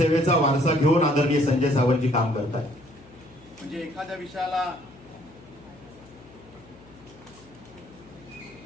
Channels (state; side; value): noise; left; hum, 24 dB below the sound